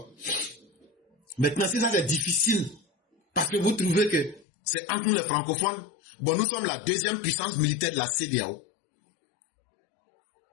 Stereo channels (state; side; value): drops out; right; at 4.5 s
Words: Maintenant, si ça c'est difficile, parce que vous trouvez que c'est entre nous les francophones, bon, nous sommes la deuxième puissance militaire de la CEDEAO.